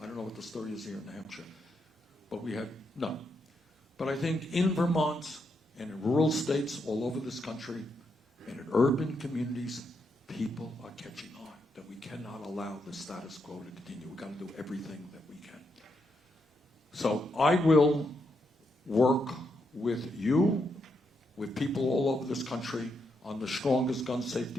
I don't know what the story is here in New Hampshire, but we had none. But I think in Vermont and in rural states all over this country and in urban communities, people are catching on that we cannot allow the status quo to continue. We've got to do everything that we can. So I will work with you, with people all over this country, on the strongest gun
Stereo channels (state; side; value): normal; both; correlation 0.80